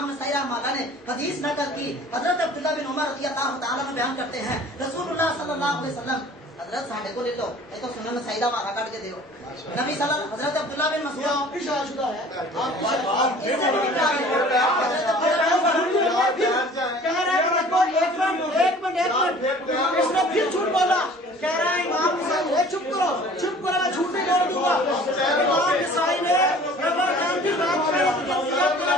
नसाई रहमतुल्लाह ने हदीस नकल की। हजरत अब्दुल्लाह बिन उमर रज़ी अल्लाह तआला अन्हु बयान करते हैं, रसूलुल्लाह सल्लल्लाहु अलैहि वसल्लम, हजरत साढ़े को ले लो, ये तो सुनन नसाई दा मारा काट के दो। नबी सल्लल्लाहु हजरत अब्दुल्लाह बिन मसूद आपकी शादीशुदा है, आपकी इससे भी निकाल दो। कह रहा है देखो, एक मिनट इसने फिर झूठ बोला। कह रहा है इमाम नसाई, चुप करो, मैं झूठ नहीं बोल दूंगा। इमाम नसाई ने रमजान की रात में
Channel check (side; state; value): both; normal; correlation 0.48